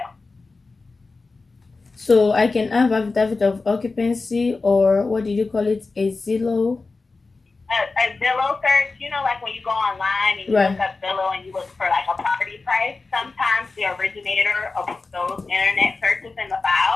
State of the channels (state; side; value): quieter; right; 3.8 dB